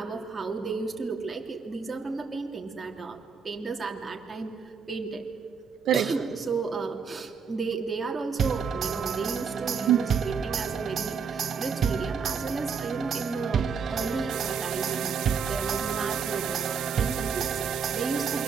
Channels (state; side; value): quieter; left; 6.0 dB